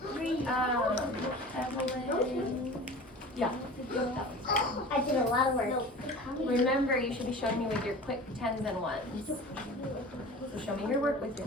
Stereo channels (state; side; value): normal; both; correlation 0.38